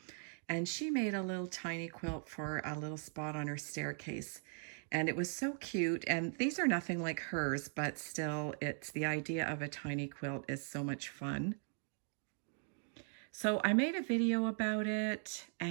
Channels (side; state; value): left; silent; 51 dB below the other